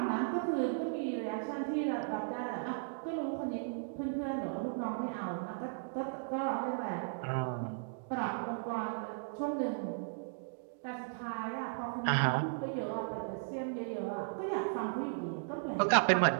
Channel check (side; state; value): left; silent; digital silence